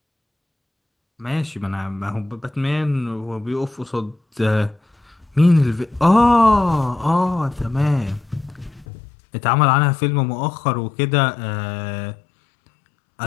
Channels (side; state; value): right; drops out; at 8.8 s